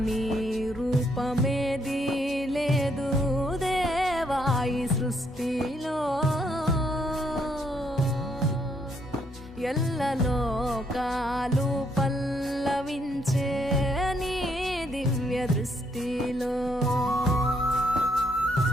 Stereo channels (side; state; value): both; normal; correlation 0.73